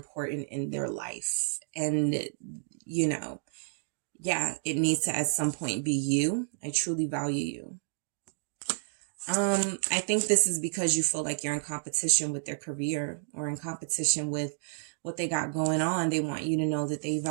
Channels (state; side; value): silent; left; digital silence